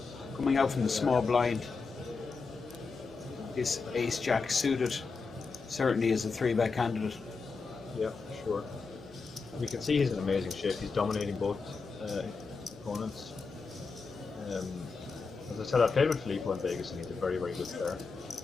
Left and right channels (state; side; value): quieter; right; 4.6 dB